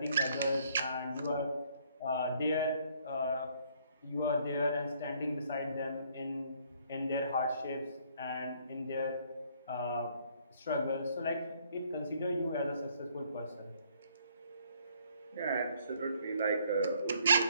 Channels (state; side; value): inverted; both; correlation -0.65